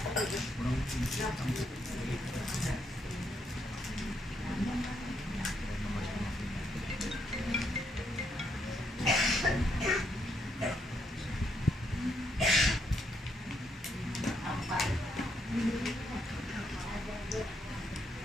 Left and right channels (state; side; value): normal; both; correlation 0.76